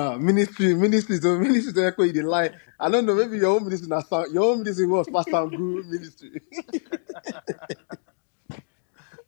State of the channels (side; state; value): right; silent; digital silence